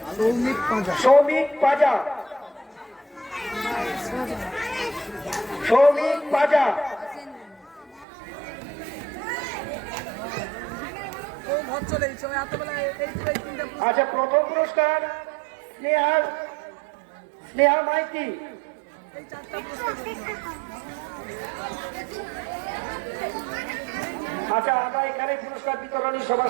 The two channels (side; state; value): left; drops out; at 8.1 s